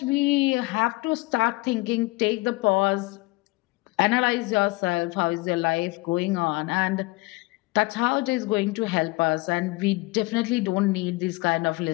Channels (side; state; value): right; quieter; 23.1 dB